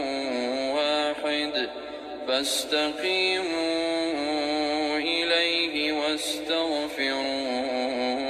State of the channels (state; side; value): identical; both; correlation 1.00